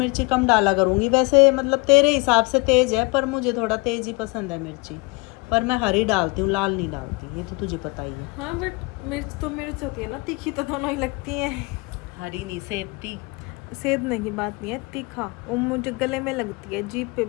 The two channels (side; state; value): right; quieter; 27.1 dB